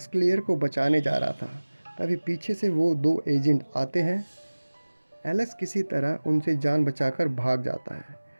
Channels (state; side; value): inverted; both; correlation -1.00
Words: क्लेयर को बचाने जा रहा था, तभी पीछे से वो दो एजेंट आते हैं। एलेक्स किसी तरह उनसे जान बचाकर भाग जाता है